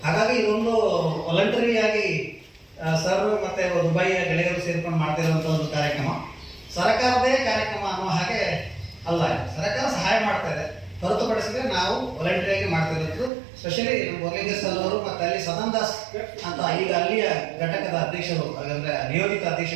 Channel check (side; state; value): left; drops out; at 13.3 s